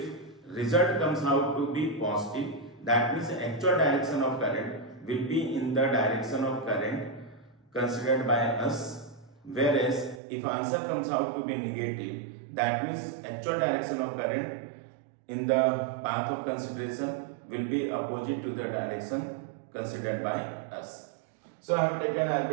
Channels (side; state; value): left; drops out; at 10.2 s